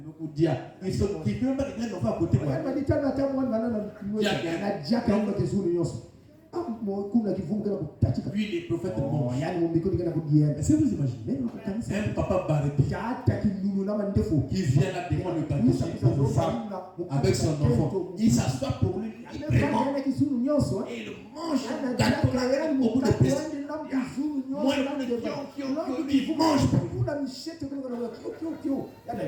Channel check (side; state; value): both; identical; correlation 1.00